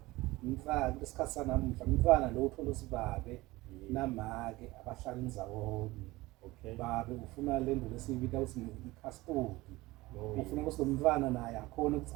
mfana isikhathi sanamhla umfana lo uthola usibabe namake abahlala indawonye babe ufuna lento lesiyibita ukuthi ikhastodi ufuna ukuthi lo mntwana naye akhona ukuthi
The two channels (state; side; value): quieter; left; 20.0 dB